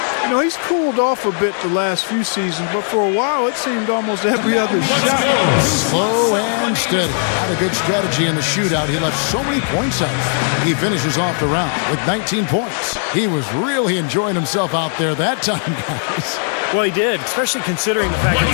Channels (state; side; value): silent; right; 56 dB below the other